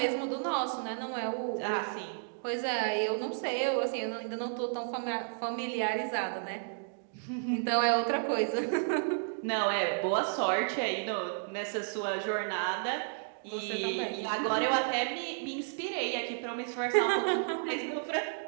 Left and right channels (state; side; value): silent; left; digital silence